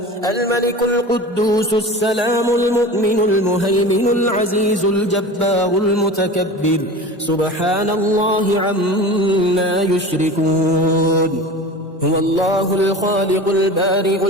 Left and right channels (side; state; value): both; normal; correlation 0.34